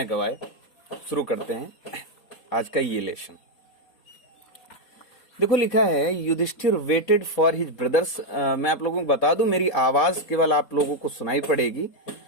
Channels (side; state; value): right; late; 4.2 ms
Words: गवाए शुरू करते हैं आज का ये लेसन। देखो, लिखा है Yudhishthir waited for his brothers. मैं आप लोगों को बता दूं, मेरी आवाज केवल आप लोगों को सुनाई पड़ेगी,